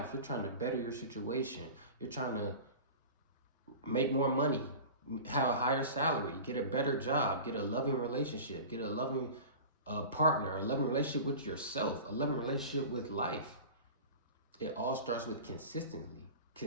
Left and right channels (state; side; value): inverted; both; correlation -0.35